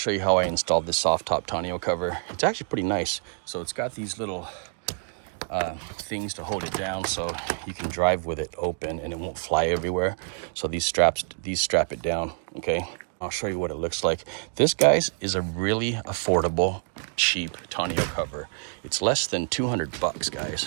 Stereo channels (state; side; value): silent; left; 60 dB below the other